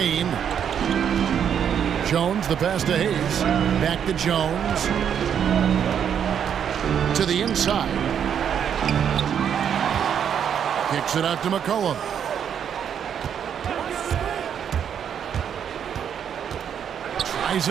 Jones, the pass to Hayes. Back to Jones. To the inside. Kicks it out to McCollum. Tries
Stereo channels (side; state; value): left; quieter; 8.4 dB